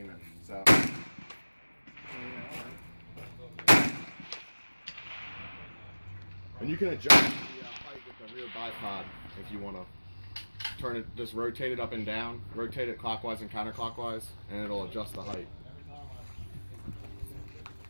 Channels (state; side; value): inverted; both; correlation -1.00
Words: So. And you can adjust the height with the rear bipod if you want to turn it, just rotate it up and down, rotate it clockwise and counterclockwise, and it'll adjust the height.